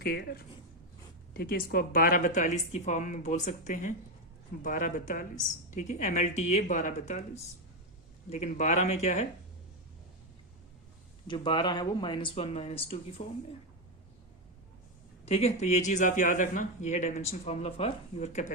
ठीक है। इसको आप 1242 की फॉर्म में बोल सकते हैं, 1242, ठीक है, MLTA 1242, लेकिन 12 में क्या है, जो 12 है वो -1 -2 की फॉर्म में, ठीक है। तो ये चीज आप याद रखना, ये है dimension formula for your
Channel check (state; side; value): normal; both; correlation 0.08